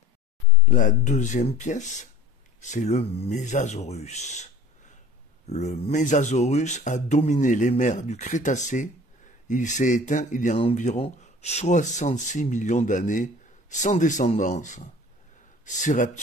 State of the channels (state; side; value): normal; both; correlation 0.45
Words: La deuxième pièce, c'est le Mésasaurus. Le Mésasaurus a dominé les mers du Crétacé. Il s'est éteint il y a environ 66 millions d'années, sans descendance. Ces